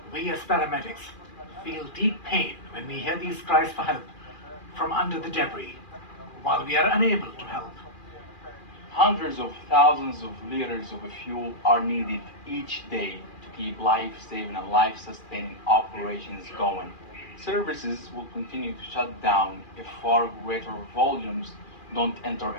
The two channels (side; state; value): right; late; 2.4 ms